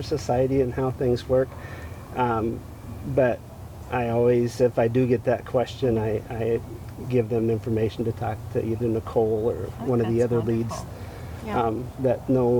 Society and how things work. But I always, if I do get that question, I give them information to talk to either Nichole or one of the That's other leads wonderful. Yeah. that know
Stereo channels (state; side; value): identical; both; correlation 1.00